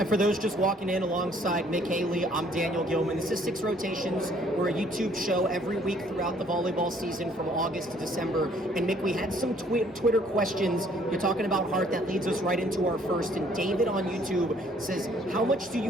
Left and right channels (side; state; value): both; normal; correlation 0.62